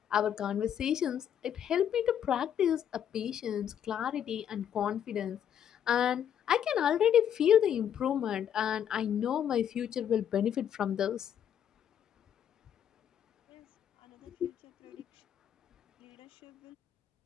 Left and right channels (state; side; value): quieter; right; 9.3 dB